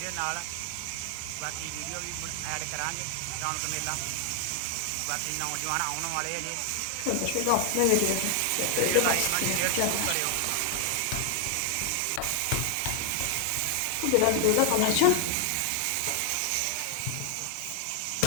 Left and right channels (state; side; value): different; both; correlation 0.00